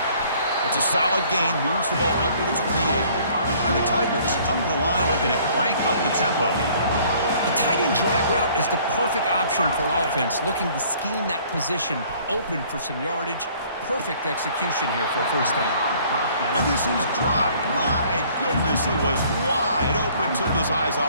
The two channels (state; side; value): inverted; both; correlation -0.57